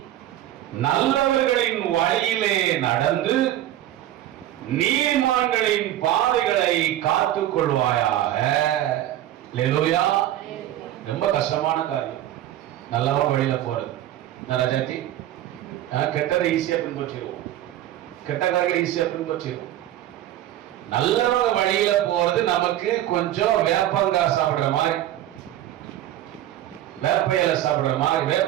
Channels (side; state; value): left; quieter; 13.0 dB